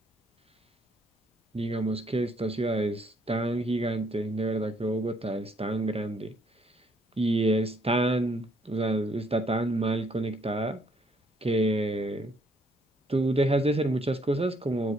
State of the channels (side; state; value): both; normal; correlation 0.67